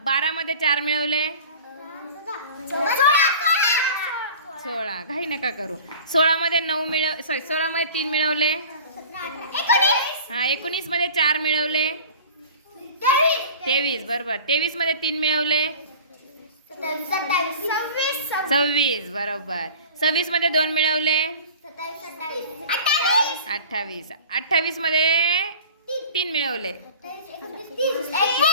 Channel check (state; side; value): inverted; both; correlation -0.41